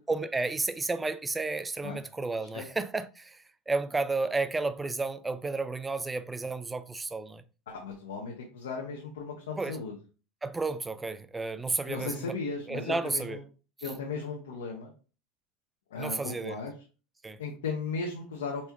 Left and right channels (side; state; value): both; normal; correlation 0.68